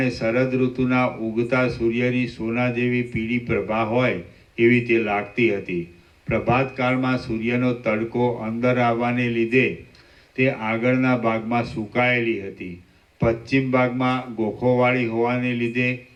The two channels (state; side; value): identical; both; correlation 1.00